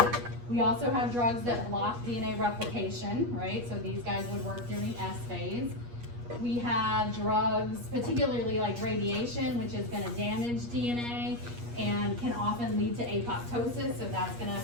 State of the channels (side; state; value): left; late; 8.4 ms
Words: We also have drugs that block DNA replication, right? So these guys would work during S phase. We have drugs, particularly like radiation, which is gonna damage DNA and can often lead to apoptosis, so that's gonna